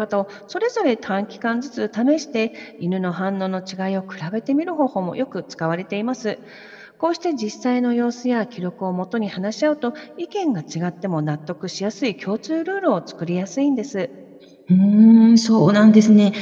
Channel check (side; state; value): both; identical; correlation 1.00